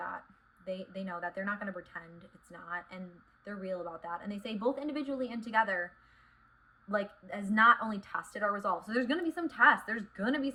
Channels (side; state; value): both; identical; correlation 1.00